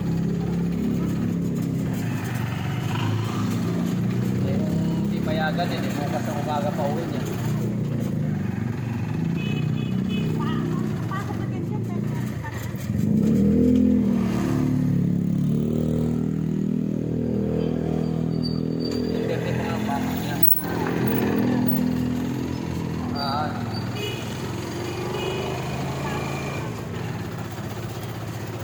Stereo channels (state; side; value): identical; both; correlation 1.00